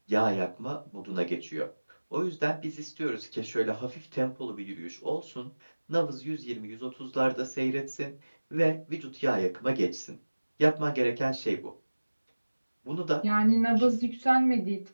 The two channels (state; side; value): inverted; both; correlation -1.00